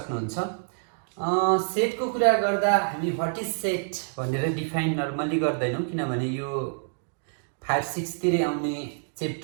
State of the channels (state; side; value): silent; left; digital silence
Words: सेट को कुरा गर्दा हामी व्हाट इज सेट भनेर डिफाइन नर्मली गर्दैनौं, किनभने यो 5, 6 तिरै आउने